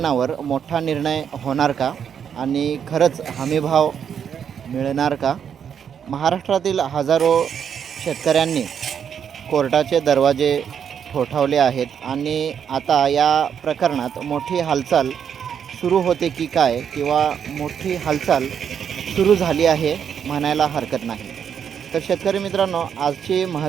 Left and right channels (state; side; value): quieter; left; 7.9 dB